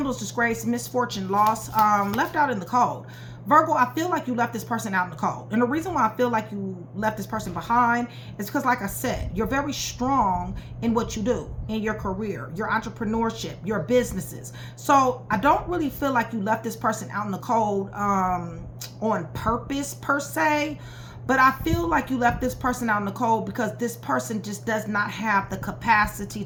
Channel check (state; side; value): identical; both; correlation 1.00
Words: disgrace, misfortune, loss, left out in the cold. Virgo, I feel like you left this person out in the cold. And the reason why I feel like you left this person behind is because, like I said, you're very strong in what you do, in your career, your entrepreneurship, your businesses. So I don't really feel like you left this person out in the cold on purpose, per se. But I feel like you left this person out in the cold because this person just does not have the capacity